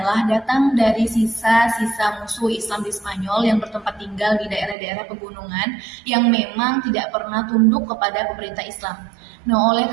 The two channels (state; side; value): drops out; left; at 4.8 s